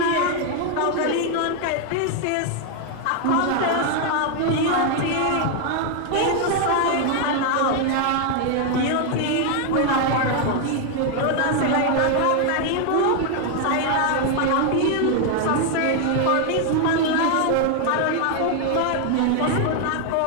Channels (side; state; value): both; different; correlation 0.01